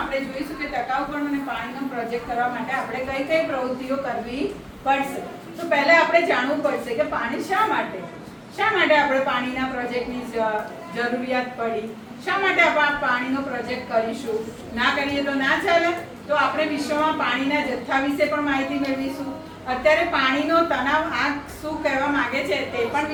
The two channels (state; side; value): identical; both; correlation 1.00